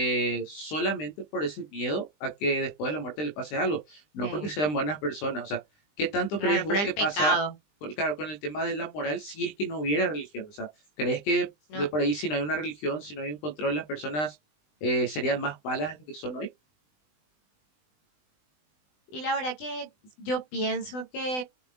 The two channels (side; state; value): right; late; 20 ms